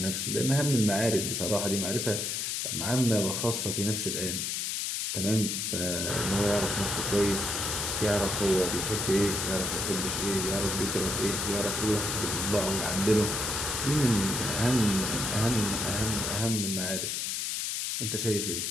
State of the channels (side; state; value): left; noise; hiss, 1 dB below the sound